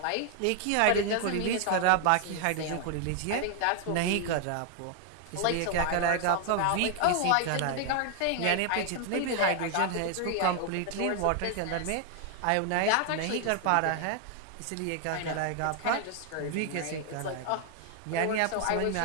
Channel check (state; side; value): different; both; correlation 0.00